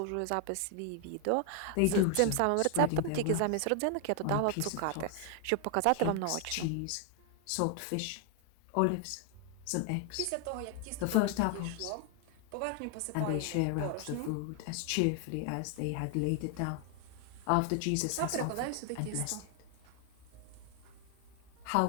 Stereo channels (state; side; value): different; both; correlation 0.00